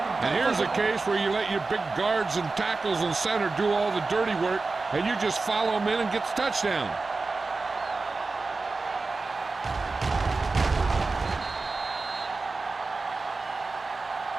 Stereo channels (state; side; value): quieter; left; 3.8 dB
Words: And here's a case where you let your big guards and tackles and center do all the dirty work, and you just follow them in and get the touchdown.